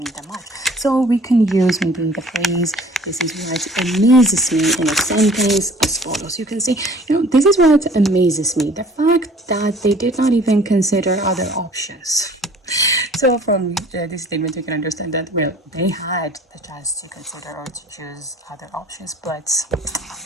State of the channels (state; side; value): normal; both; correlation 0.51